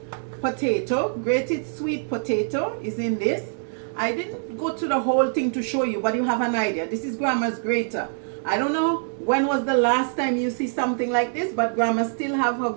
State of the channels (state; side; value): silent; left; digital silence